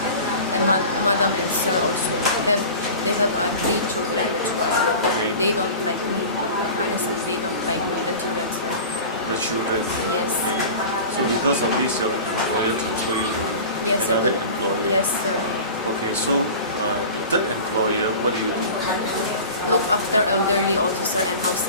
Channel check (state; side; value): inverted; both; correlation -0.36